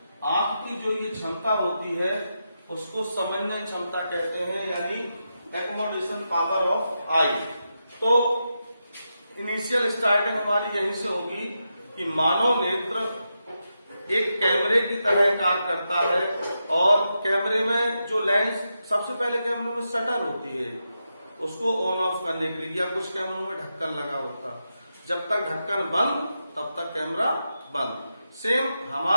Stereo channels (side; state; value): both; inverted; correlation -0.87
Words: आंख की जो ये क्षमता होती है उसको समझने क्षमता कहते हैं, यानी एकोमोडेशन पावर ऑफ आई। तो इनिशियल स्टार्टिंग हमारी यहीं से होगी कि मानव नेत्र एक कैमरे की तरह काम करता है और कैमरे में जो लेंस, सबसे पहले कैमरे में शटर होती है, उसको ऑन ऑफ करने के लिए, या कुछ कैमरों में ढक्कन लगा होता, जब तक ढक्कन बंद तब तक कैमरा बंद। सेम